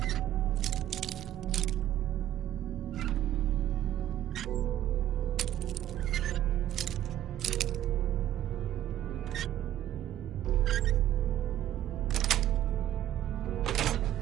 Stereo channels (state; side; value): quieter; left; 12.4 dB